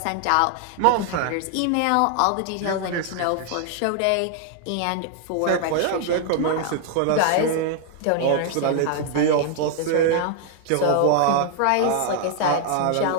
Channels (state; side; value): different; both; correlation 0.00